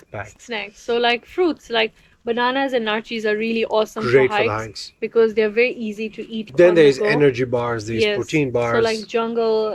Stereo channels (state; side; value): identical; both; correlation 1.00